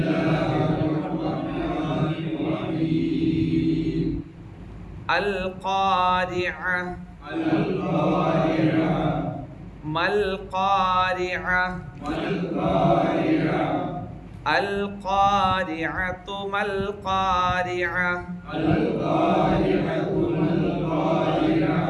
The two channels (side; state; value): both; identical; correlation 1.00